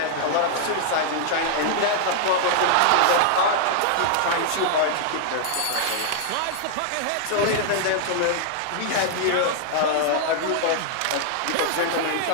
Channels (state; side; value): different; both; correlation -0.01